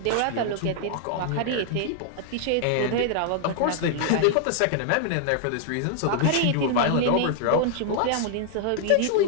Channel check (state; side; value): different; both; correlation -0.01